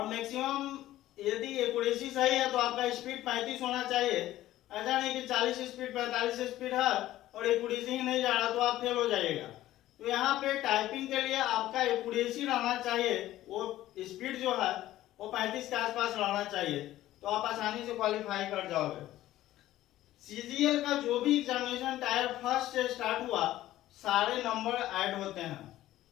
मैक्सिमम यदि एक्यूरेसी सही है तो आपका स्पीड 35 होना चाहिए। ऐसा नहीं कि 40 स्पीड 45 स्पीड है और एक्यूरेसी ही नहीं जा रहा तो आप फेल हो जाइएगा। तो यहाँ पे टाइपिंग के लिए आपका एक्यूरेसी रहना चाहिए, वो स्पीड जो है वो 35 के आसपास रहना चाहिए, तो आप आसानी से क्वालिफाई कर जाओगे। CGL का जो भी एग्जामिनेशन टायर फर्स्ट से स्टार्ट हुआ सारे नंबर ऐड होते हैं।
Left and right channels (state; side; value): quieter; right; 14.6 dB